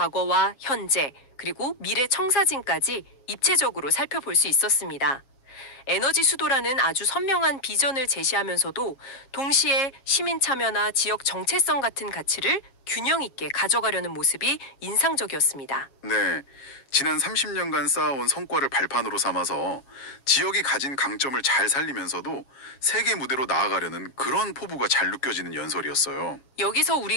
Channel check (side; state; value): right; late; 7.3 ms